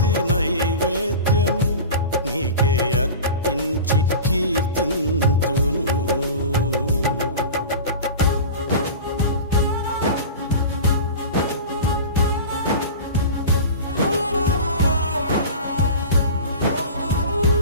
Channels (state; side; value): inverted; both; correlation -0.33